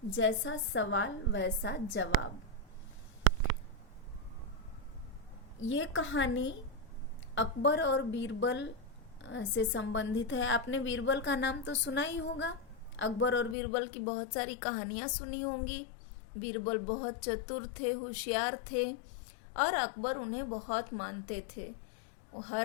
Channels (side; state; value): right; drops out; at 13.6 s